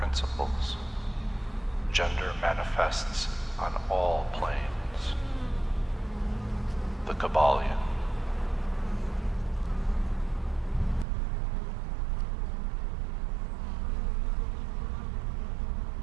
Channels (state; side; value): drops out; left; at 11.1 s